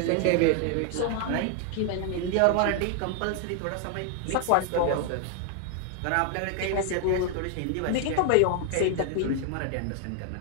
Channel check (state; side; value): different; both; correlation 0.00